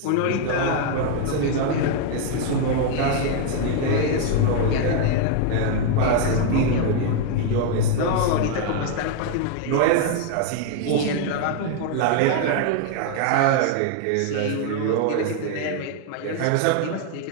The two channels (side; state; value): both; different; correlation 0.00